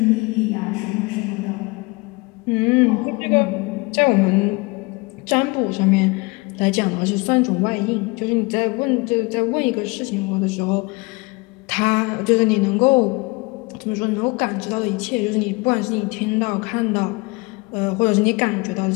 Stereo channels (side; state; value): right; quieter; 26.1 dB